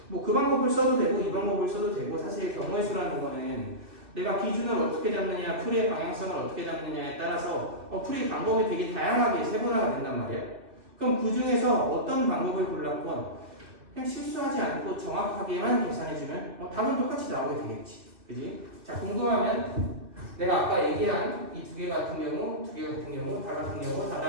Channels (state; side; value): late; left; 2.5 ms